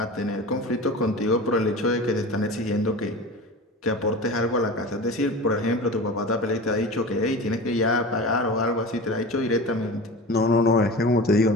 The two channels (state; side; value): normal; both; correlation 0.32